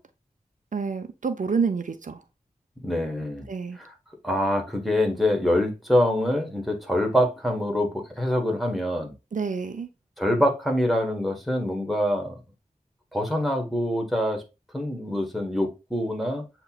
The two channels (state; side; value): normal; both; correlation 0.82